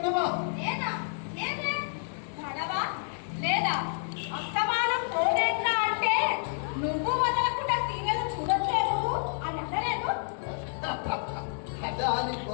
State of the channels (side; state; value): right; silent; digital silence